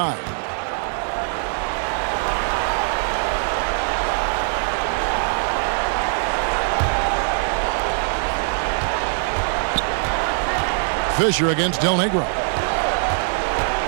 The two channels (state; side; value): silent; left; 64 dB below the other